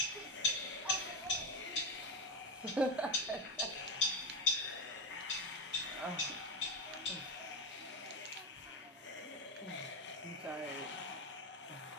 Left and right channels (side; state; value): both; normal; correlation 0.14